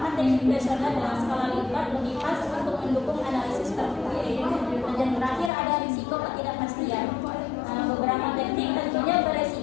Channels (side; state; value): right; drops out; at 5.5 s